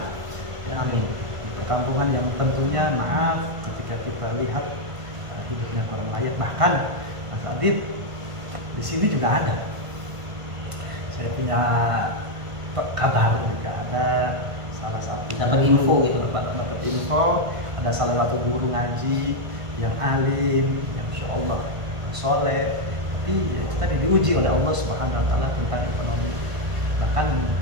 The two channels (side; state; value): left; late; 1.5 ms